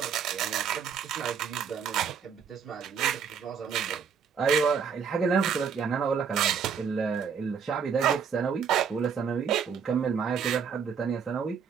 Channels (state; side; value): quieter; left; 6.8 dB